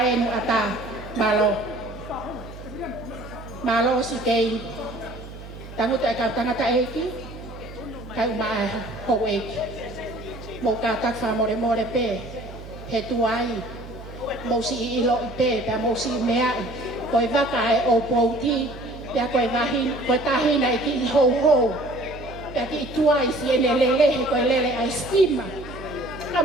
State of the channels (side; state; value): right; noise; hum, 14 dB below the sound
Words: e nu ata, malo. Malo si kei, tangu te ka tangata eki, kai uma e hou eki. Mo ka tak wha more more pe, he tuai, mo si i ilo i pe, pea mo si mea i, koe waka e o pouti, pea koe wahin, koe tahina e ki i hou hou, pea ki i tuai si ene lele, he koe lele a estima. Ka